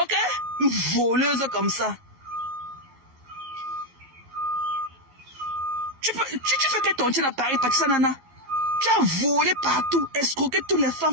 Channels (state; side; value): late; left; 12 ms